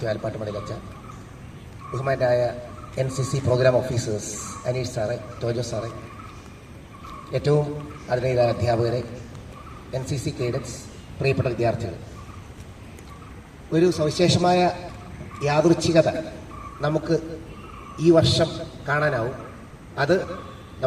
ആലപ്പാട്ടുമടയിലച്ച, ബഹുമാനായ NCC പ്രോഗ്രാം ഓഫീസേഴ്സ് അനീഷ് സാറെ, ടോജോ സാറെ, ഏറ്റവും ആദരണീയരായ അധ്യാപകരെ, NCC കേഡറ്റ്സ്, പ്രിയപ്പെട്ട വിദ്യാർത്ഥികൾ, ഒരു സവിശേഷമായ യാദൃച്ഛികത നമുക്ക് ഈ വർഷം കാണാനാവും. അത്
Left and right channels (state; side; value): identical; both; correlation 1.00